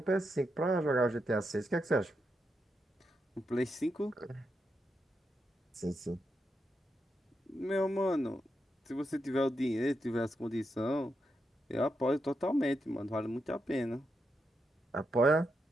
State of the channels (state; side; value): normal; both; correlation 0.84